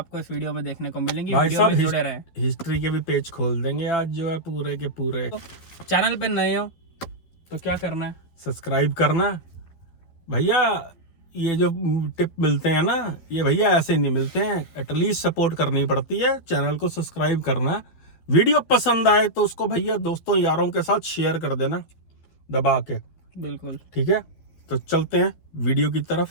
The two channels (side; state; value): right; late; 12 ms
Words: इस वीडियो में देखने को मिलेंगी। भाई वीडियो में साहब जुड़े रहें। हिस्ट्री के भी पेज खोल देंगे आज, जो है पूरे के पूरे। तो चैनल पे नए हो तो क्या करना है, सब्सक्राइब करना भैया। ये जो टिप मिलते हैं ना, ये भैया ऐसे नहीं मिलते हैं, एटलीस्ट सपोर्ट करनी पड़ती है। चैनल को सब्सक्राइब करना, वीडियो पसंद आए तो उसको भैया दोस्तों यारों के साथ शेयर कर देना दबा के। बिल्कुल ठीक है, तो चलते हैं वीडियो की